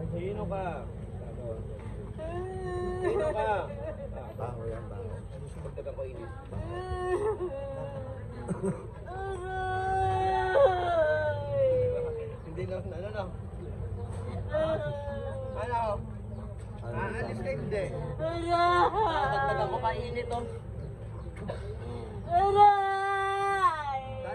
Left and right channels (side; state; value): both; identical; correlation 1.00